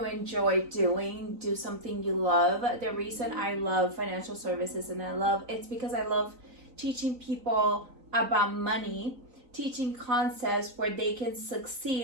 enjoy doing. Do something you love. The reason I love financial services it's because I love teaching people about money, teaching concepts where they can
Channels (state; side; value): late; left; 3.9 ms